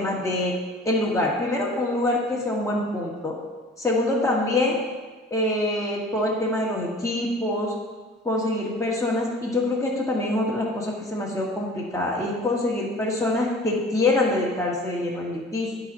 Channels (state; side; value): normal; both; correlation 0.44